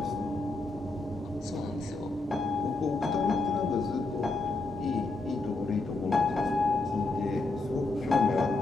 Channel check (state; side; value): quieter; right; 3.4 dB